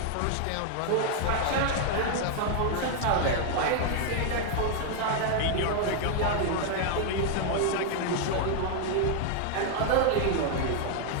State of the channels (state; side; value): different; both; correlation 0.00